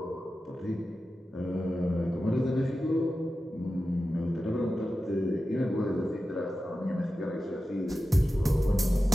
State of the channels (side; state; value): both; normal; correlation 0.93